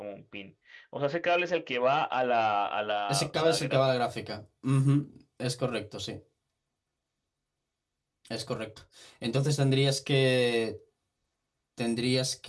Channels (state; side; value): identical; both; correlation 1.00